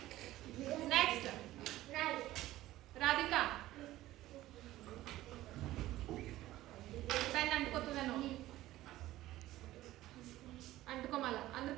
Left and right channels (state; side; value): quieter; left; 15.7 dB